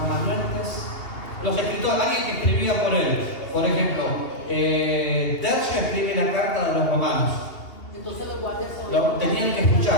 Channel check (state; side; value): late; right; 2.7 ms